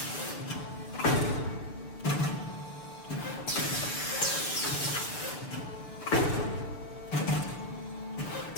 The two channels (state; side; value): late; right; 6.8 ms